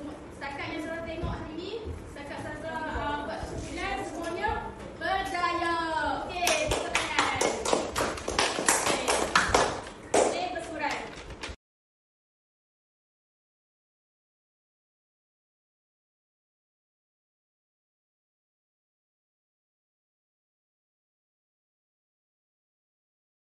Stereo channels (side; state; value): both; identical; correlation 1.00